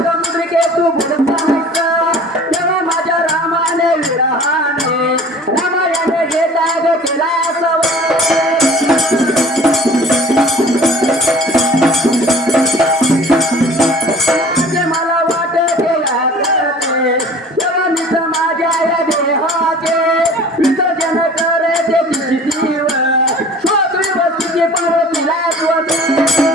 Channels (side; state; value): both; normal; correlation 0.46